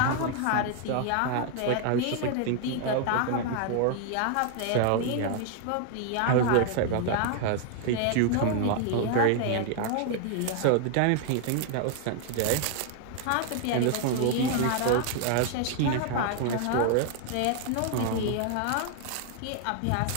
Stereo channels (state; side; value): different; both; correlation 0.00